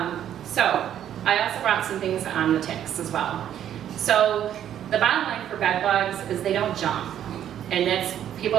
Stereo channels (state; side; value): quieter; left; 10.4 dB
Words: So I also brought some things on the ticks as well. So the bottom line for bed bugs is they don't jump. And that's,